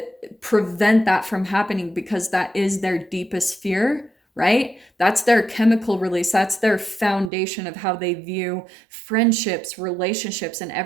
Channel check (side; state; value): left; drops out; at 7.3 s